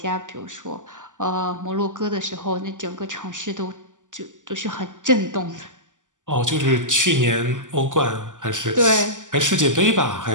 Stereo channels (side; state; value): left; late; 0.87 ms